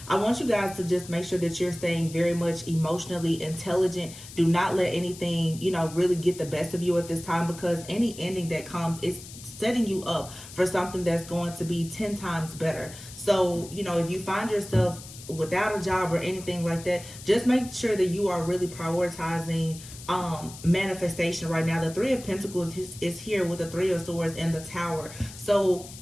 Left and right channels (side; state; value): left; noise; hiss, 15 dB below the sound